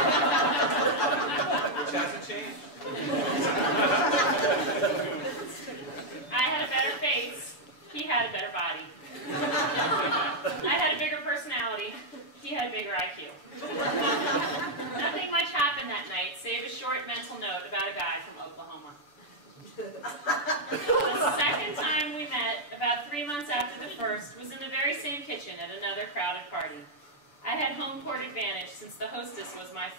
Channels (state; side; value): late; right; 6.9 ms